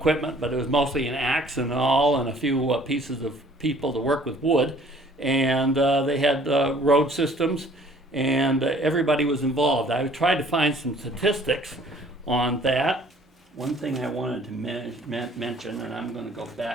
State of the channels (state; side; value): normal; both; correlation 0.56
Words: but it was mostly an axe and all, and a few pieces of people to work with wood. And they had road systems, and everybody was involved. I tried to find some statistics on that. One thing I wanted to mention, and I'm going to go